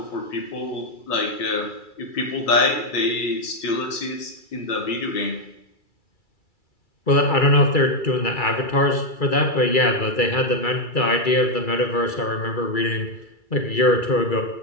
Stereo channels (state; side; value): late; right; 2.3 ms